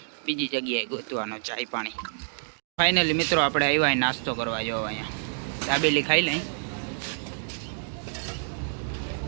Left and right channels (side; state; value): left; silent; digital silence